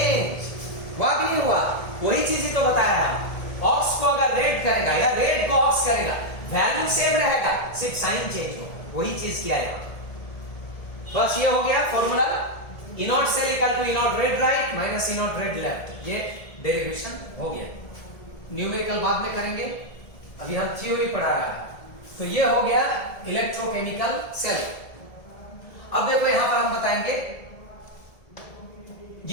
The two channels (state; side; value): late; right; 1.7 ms